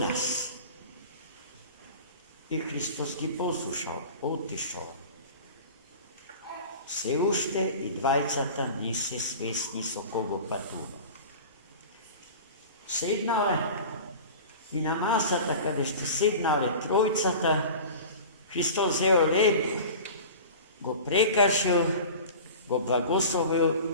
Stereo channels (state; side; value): inverted; both; correlation -0.36